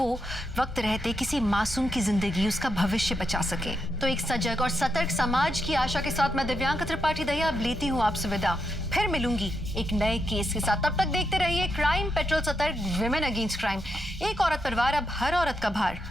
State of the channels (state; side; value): normal; both; correlation 0.83